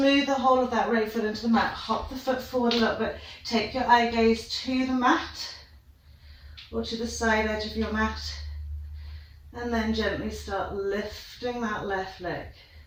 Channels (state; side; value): identical; both; correlation 1.00